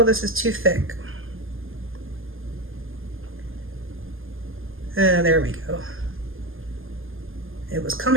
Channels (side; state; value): left; late; 0.59 ms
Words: this is too thick. There we go. It was